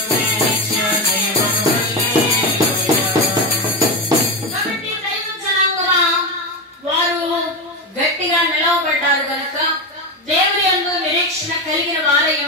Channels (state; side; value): normal; both; correlation 0.16